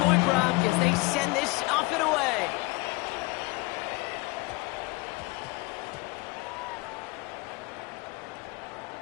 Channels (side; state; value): right; quieter; 25.1 dB